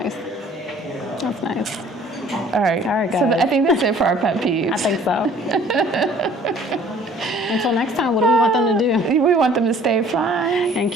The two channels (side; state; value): both; normal; correlation 0.53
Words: That's nice. All right. All right, So guys. I think that's it for our pet peeves. I think so. Until next time, what do we want them to do? We want them to stay fly. And